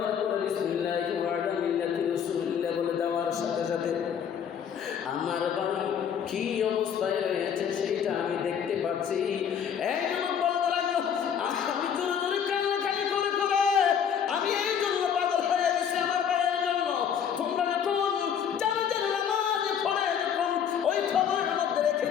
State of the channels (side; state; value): right; quieter; 8.1 dB